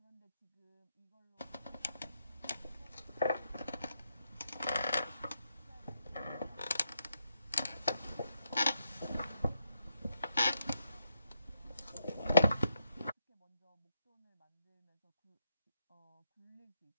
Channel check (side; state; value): both; inverted; correlation -0.79